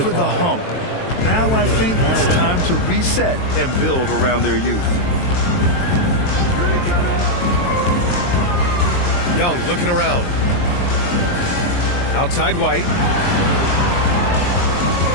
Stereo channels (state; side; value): late; right; 23 ms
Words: the hump. Now I think it's time to reset and build around their youth. Young looking around. Outside White.